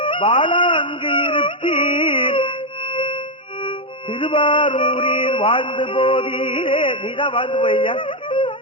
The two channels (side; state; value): both; normal; correlation 0.03